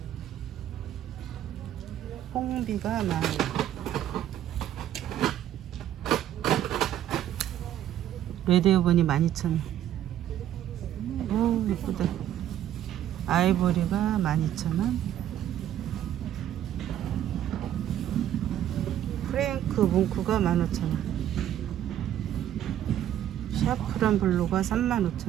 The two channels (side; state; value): left; quieter; 11.5 dB